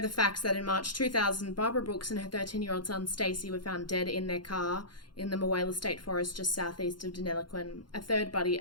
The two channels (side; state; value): right; late; 0.71 ms